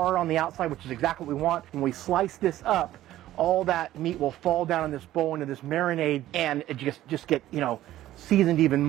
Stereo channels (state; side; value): quieter; left; 14.1 dB